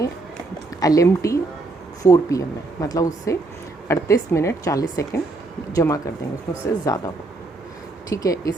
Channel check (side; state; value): left; quieter; 3.2 dB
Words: LMT 4 PM है, मतलब उससे 38 मिनट 40 सेकेंड जमा कर देंगे, उसमें उससे ज़्यादा हो। ठीक है,